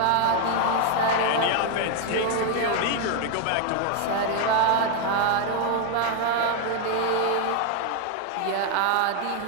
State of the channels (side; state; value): both; different; correlation 0.01